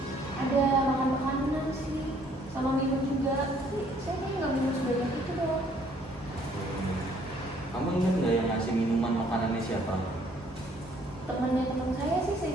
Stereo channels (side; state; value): both; normal; correlation 0.62